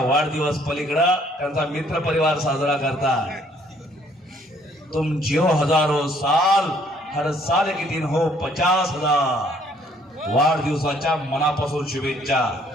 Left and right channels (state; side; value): normal; both; correlation 0.63